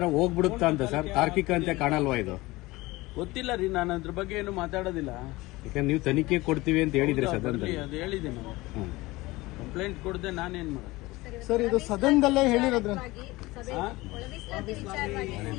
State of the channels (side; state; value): right; quieter; 20.7 dB